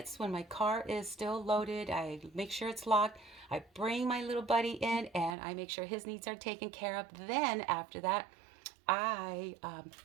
when my car is still loaded. I make sure it's locked. I bring my little buddy in and I make sure his needs are taken care of. Then after that,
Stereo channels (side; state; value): left; drops out; at 5.4 s